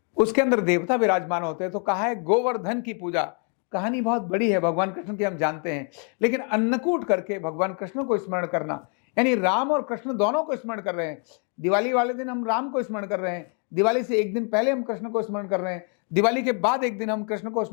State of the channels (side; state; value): right; quieter; 39.6 dB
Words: उसके अंदर देवता विराजमान होते हैं। तो कहा है गोवर्धन की पूजा। कहानी बहुत बड़ी है भगवान कृष्ण की, हम जानते हैं, लेकिन अन्नकूट करके भगवान कृष्ण को स्मरण करना, यानी राम और कृष्ण दोनों को स्मरण कर रहे हैं। दिवाली वाले दिन हम राम को स्मरण कर रहे हैं, दिवाली से एक दिन पहले हम कृष्ण को स्मरण कर रहे हैं, दिवाली के बाद एक दिन हम कृष्ण को